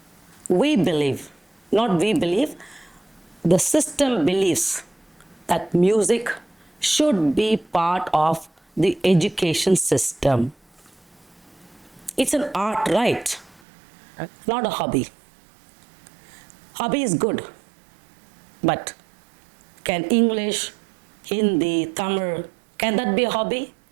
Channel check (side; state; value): left; drops out; at 13.6 s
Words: we believe, not we believe, the system believes that music should be part of the education system. It's an art, right? Not a hobby. Hobby is good, but can English, Hindi, Tamil, can that be a hobby?